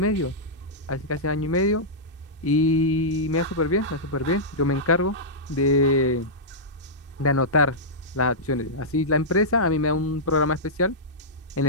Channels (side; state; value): both; normal; correlation -0.12